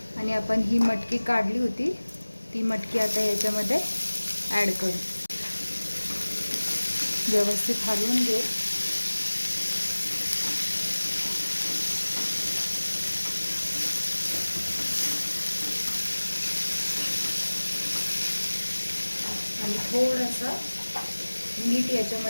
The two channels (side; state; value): both; inverted; correlation -1.00